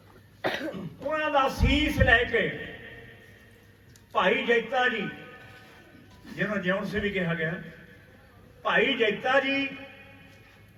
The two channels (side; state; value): both; identical; correlation 1.00